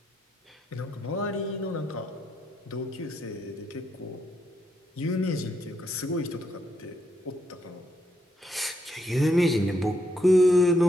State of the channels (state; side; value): normal; both; correlation 0.78